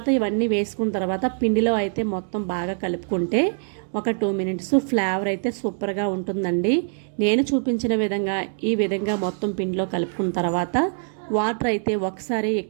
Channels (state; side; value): silent; left; digital silence